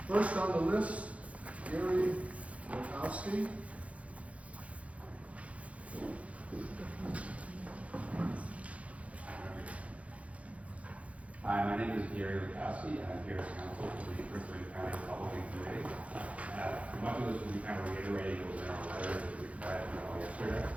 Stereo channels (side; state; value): left; late; 0.065 ms